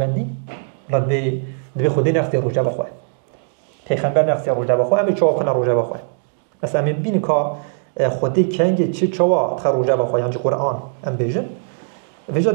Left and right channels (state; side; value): silent; left; digital silence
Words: بلاد دبي خودي نخسي روجا بخواه پیغمبر نخسي روجا بخواه أم چواب خنا روجا بخواه مثلا أم بين كا خودي كنگ چه چوا تخ روجا بخواه يانجي قرآن أم بيجن